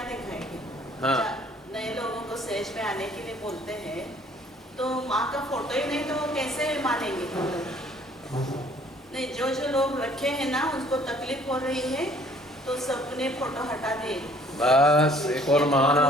दिखाएंगे? हाँ। नए लोगों को स्टेज पे आने के लिए बोलते हैं, तो माँ का फोटो ही नहीं तो वो कैसे मानेंगे? नहीं, जो लोग रखे हैं ना, उनको तकलीफ हो रही है, तो सबने फोटो हटा दिए। बस एक और महान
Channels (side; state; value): both; normal; correlation 0.58